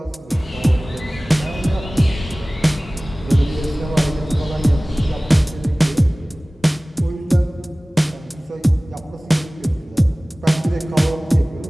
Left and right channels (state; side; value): normal; both; correlation 0.98